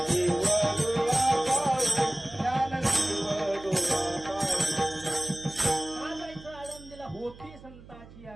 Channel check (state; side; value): noise; right; hum, 19 dB below the sound